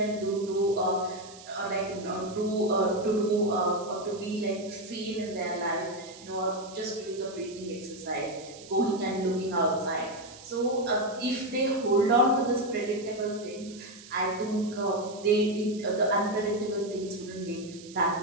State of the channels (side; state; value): right; noise; hiss, 18 dB below the sound